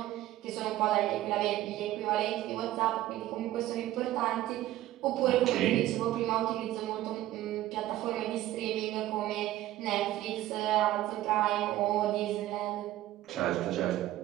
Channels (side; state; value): left; quieter; 14.8 dB